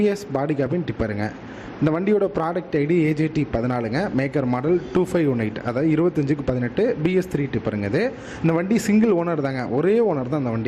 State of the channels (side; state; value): both; identical; correlation 1.00